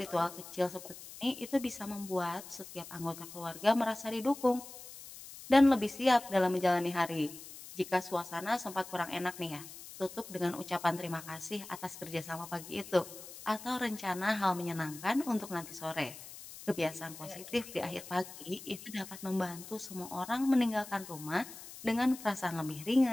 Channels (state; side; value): noise; left; hiss, 14 dB below the sound